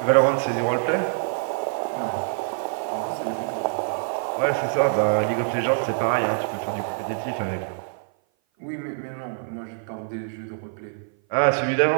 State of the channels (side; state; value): left; silent; 57 dB below the other